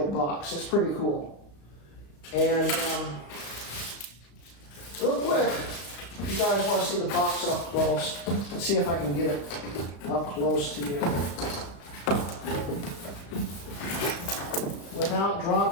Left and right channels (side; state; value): right; late; 35 ms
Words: box. It's pretty cool. And real quick, if you guys want to see the box up close, let's see if I can get it up close to you without